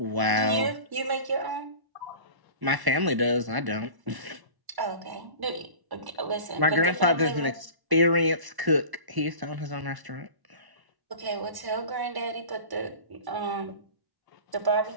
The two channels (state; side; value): late; left; 1.1 ms